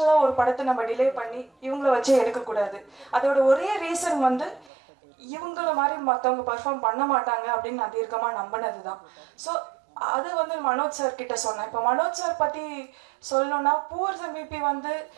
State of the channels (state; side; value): drops out; left; at 4.7 s